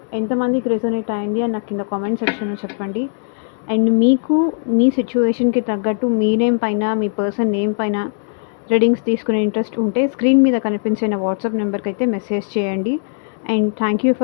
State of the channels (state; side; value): silent; right; digital silence